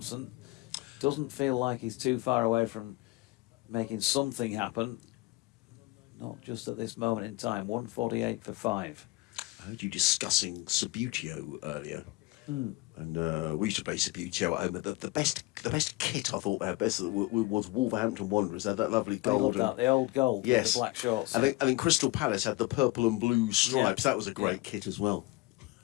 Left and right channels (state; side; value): quieter; right; 21.1 dB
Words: Doesn't feel like he's too far away from making something happen. Not just at this moment in time. 148 for 5. I heard you discussing Subbuteo earlier. And we used to play Subbuteo at home. The best kit I thought they had best was Wolverhampton Wanderers. They had that lovely gold. The old gold with the black shorts. I think Crystal Palace had the purple and blue stripes. That was a great kit as well.